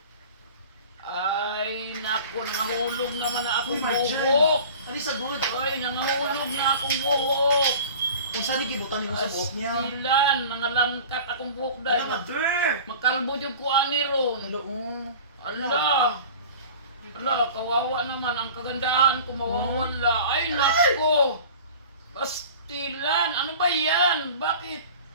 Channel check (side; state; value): both; inverted; correlation -0.40